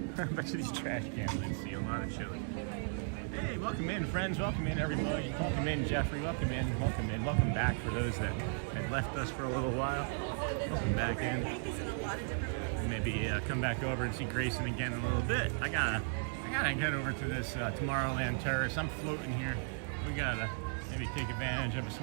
I bet you these trash can lids see a lot of chili. Hey, welcome in, friends. Welcome in, everybody. Welcome in, Jeffrey. Welcome in. Welcome in. Welcome back for those that had left us for a little while. Welcome back in. Maybe come back over and see Grayson again in a little bit. I gotta get over to this Tomorrowland Terrace. I'm floating here. We gotta maybe take advantage of a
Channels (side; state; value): left; silent; 54 dB below the other